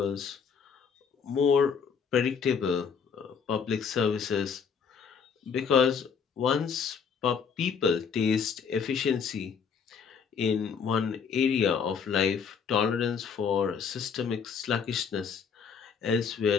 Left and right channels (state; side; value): quieter; right; 6.4 dB